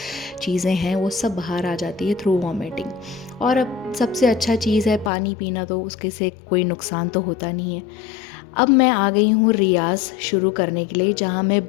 चीज़ें हैं वो सब बाहर आ जाती है थ्रू वॉमिटिंग। और अब सबसे अच्छा चीज़ है पानी पीना, तो उसके से कोई नुकसान तो होता नहीं है। अब मैं आ गई हूँ रियाज़ शुरू करने के लिए, जहाँ मैं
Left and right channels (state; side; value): drops out; right; at 5.1 s